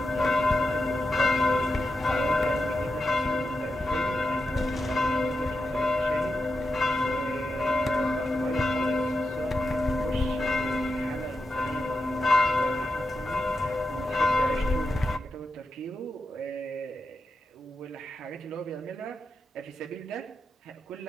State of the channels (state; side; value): normal; both; correlation 0.88